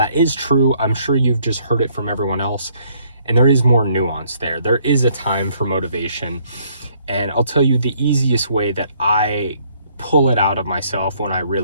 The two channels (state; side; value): inverted; both; correlation -0.66